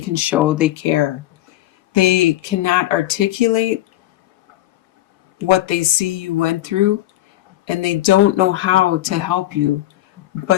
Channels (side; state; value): right; quieter; 15.0 dB